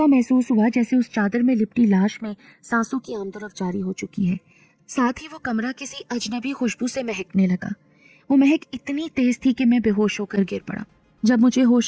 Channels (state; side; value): identical; both; correlation 1.00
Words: महसूस हुआ जैसे उस चादर में लिपटी लाश में सांसों की आमदरफ जारी हो चुकी है। साथ ही वो कमरा किसी अजनबी खुशबू से महकने लगा। वो महक इतनी तेज थी कि मैं बेहोश होकर गिर पड़ा। जब मुझे